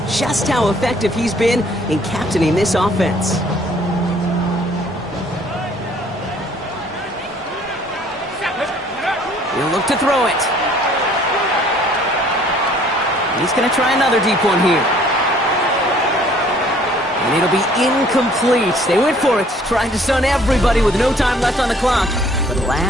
just how effective he's been in captaining this offense. He'll look to throw it. He's going to try another deep one here. And it'll be incomplete. They went for it, trying to stun everybody with no time left on the clock. But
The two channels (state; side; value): normal; both; correlation 0.58